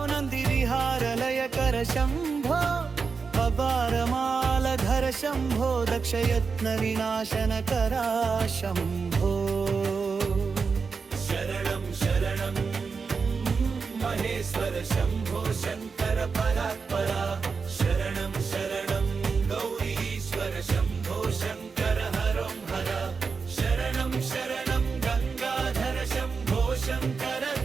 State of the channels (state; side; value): quieter; left; 5.1 dB